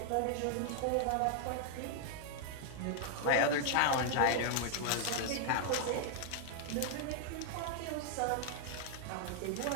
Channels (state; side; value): different; both; correlation 0.00